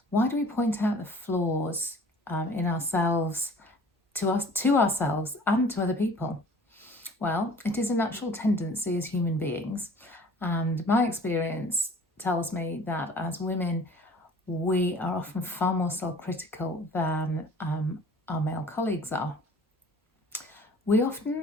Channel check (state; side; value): normal; both; correlation 0.48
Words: Why do we point out the flaws in ourselves to ourselves and to other people? Well, it is a natural tendency as human beings, and my experience tells me that as women, we are often far more self-critical than our male colleagues are. We